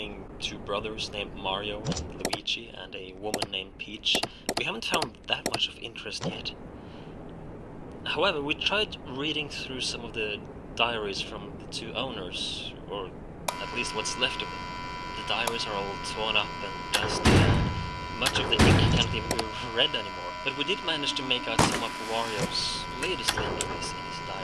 2 brothers named Mario and Luigi and a woman named Peach, we haven't found that much of interest yet. However, we tried reading through some of the diaries from the 2 owners, or at least what's left of them. The diaries are all torn up and dusty, and much of the ink can't even be read anymore. But we did manage to make out some of Wario's latest entries in his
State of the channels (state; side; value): identical; both; correlation 1.00